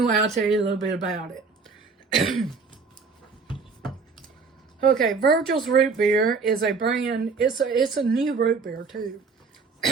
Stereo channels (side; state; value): left; quieter; 4.7 dB